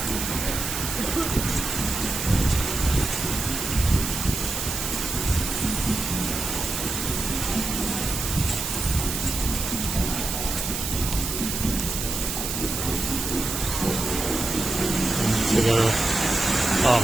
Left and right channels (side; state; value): right; noise; hiss, 3 dB below the sound